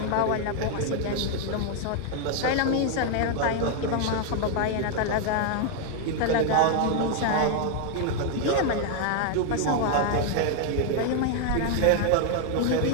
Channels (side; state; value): both; different; correlation 0.00